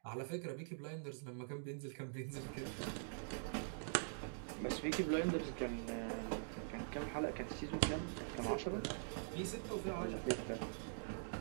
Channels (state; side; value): silent; left; digital silence